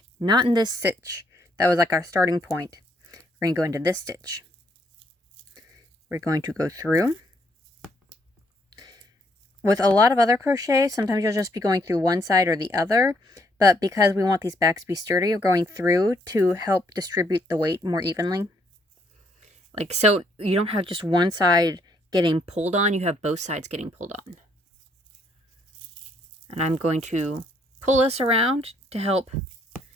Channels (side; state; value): both; normal; correlation 0.70